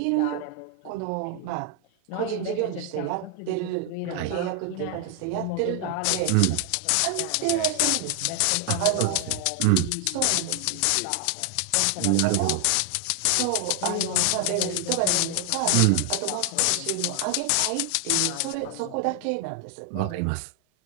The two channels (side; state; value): both; different; correlation 0.00